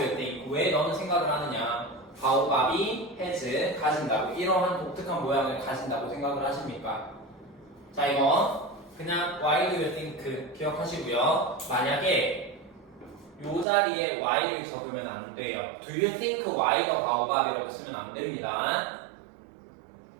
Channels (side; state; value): left; drops out; at 13.7 s